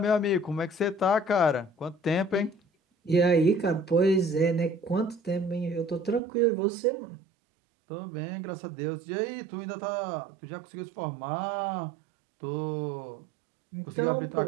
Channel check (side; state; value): left; drops out; at 6.2 s